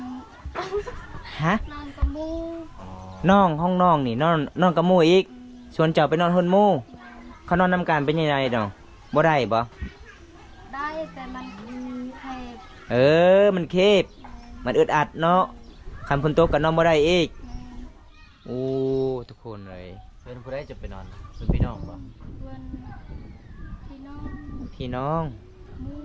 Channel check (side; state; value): both; identical; correlation 1.00